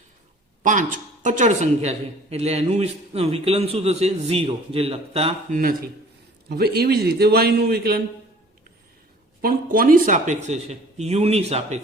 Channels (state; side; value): normal; both; correlation 0.50